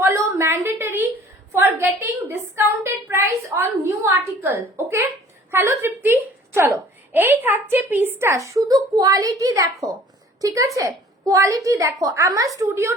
mandatory for getting discounted price on new article, okay? Hello Tripti, চলো এই থাকছে পিসটা, শুধু কোয়ালিটি দেখো, ঠিক আছে? কোয়ালিটি দেখো। আমার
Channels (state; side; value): normal; both; correlation 0.51